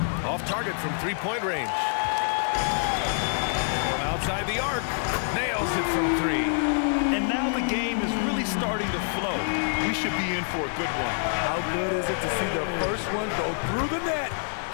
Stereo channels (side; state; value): right; silent; digital silence